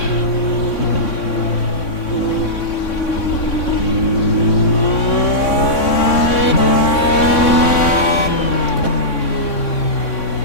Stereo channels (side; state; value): right; late; 3.6 ms